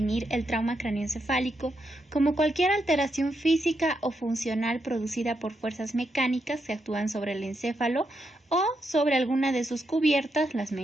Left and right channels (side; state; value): both; normal; correlation 0.82